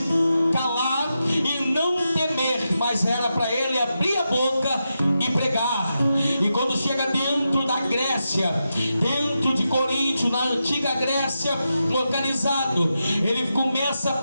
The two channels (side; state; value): both; inverted; correlation -0.88